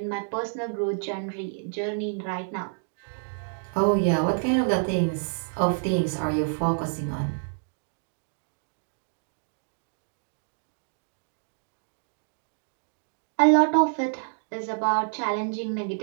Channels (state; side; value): silent; left; digital silence